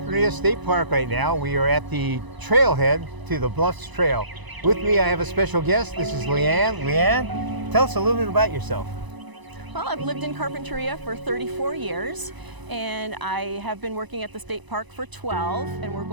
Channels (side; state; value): left; late; 1.0 ms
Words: State Park right now. We are at the trailhead to the Bluffs Trail. With me, I have a special guest. This is Leanne. Leanne, tell us a little bit about yourself. Well, I've lived in Carpinteria for 34 years, and I have been working at the state park for 12, and we're